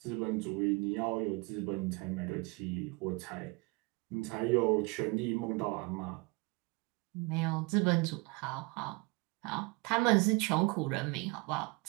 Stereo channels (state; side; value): quieter; left; 26.2 dB